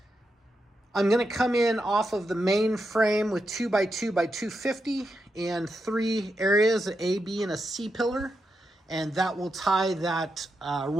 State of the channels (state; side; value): normal; both; correlation 0.85